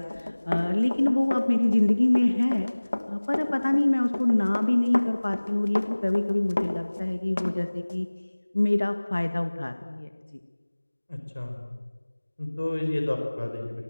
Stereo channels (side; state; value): both; inverted; correlation -1.00